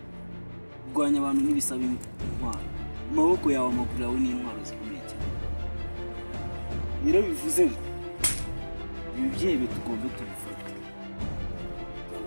kurwanya abantu n'ibisaba intwaro, amaboko yawe amaguru yawe n'intwaro zikomeye cyane. Rero bivuze ngo ibi byebe tugomba tubifata.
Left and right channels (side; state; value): both; inverted; correlation -1.00